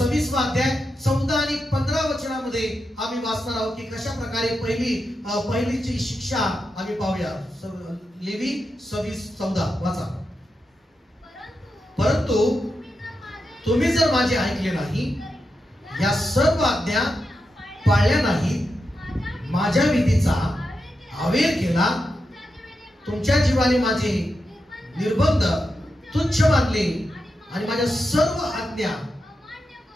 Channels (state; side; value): normal; both; correlation 0.88